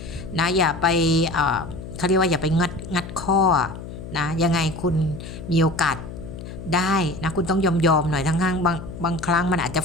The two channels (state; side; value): noise; left; hum, 11 dB below the sound